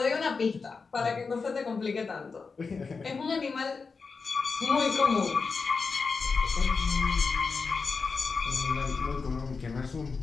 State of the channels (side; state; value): right; quieter; 4.7 dB